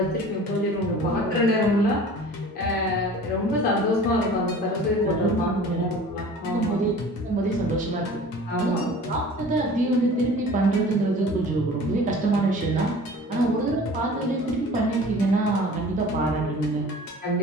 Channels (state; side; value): normal; both; correlation 0.43